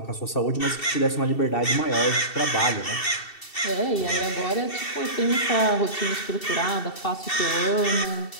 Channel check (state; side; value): late; right; 2.7 ms